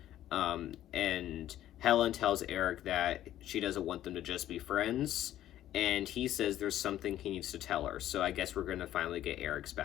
And Helen tells Eric that she doesn't want them to just be friends, and he says there's something he needs to tell her. So I guess we're going to finally get Eric's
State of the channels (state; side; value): quieter; right; 12.6 dB